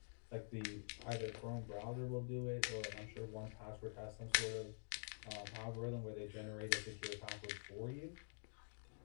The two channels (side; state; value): right; silent; digital silence